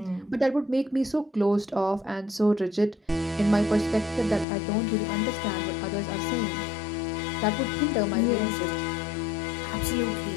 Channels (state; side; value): drops out; right; at 4.5 s